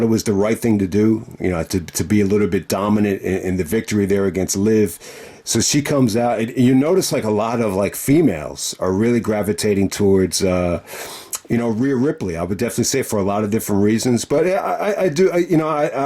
it was the right thing to do, to be a little bit dominant in the victory there against Liv. So she comes out, and you notice like a lot of like females are really gravitating towards Rhea Ripley. I would definitely say for a lot of different reasons, but I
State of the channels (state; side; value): identical; both; correlation 1.00